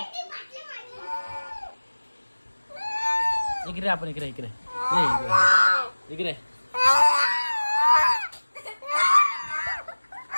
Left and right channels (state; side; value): inverted; both; correlation -1.00